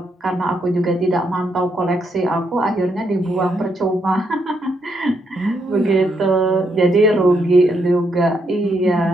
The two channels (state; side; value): normal; both; correlation 0.77